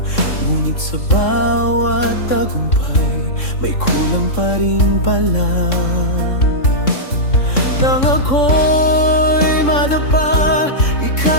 Ngunit sa bawat tagumpay, may kulang pa rin pala. Nang ako'y madapa,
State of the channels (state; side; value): late; right; 3.6 ms